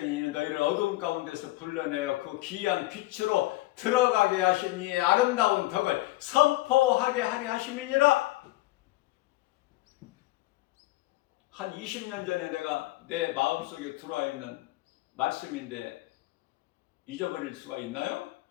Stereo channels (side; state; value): right; quieter; 18.7 dB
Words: 너희를 어두움 가운데서 불러내어 그 귀한 빛으로 들어가게 하신 이의 아름다운 덕을 선포하게 하려 하심이니라. 한 20년 전에 내가 내 마음속에 들어와 있는 말씀인데 잊어버릴 수가 있나요?